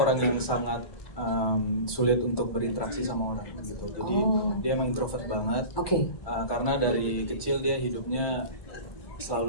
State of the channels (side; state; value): right; late; 1.2 ms